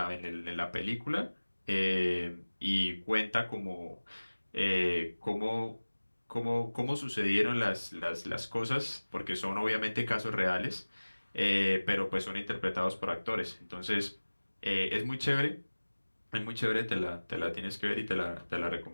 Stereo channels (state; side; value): inverted; both; correlation -1.00